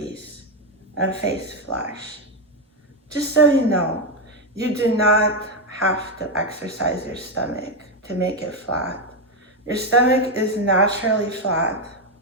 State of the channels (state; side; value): normal; both; correlation 0.06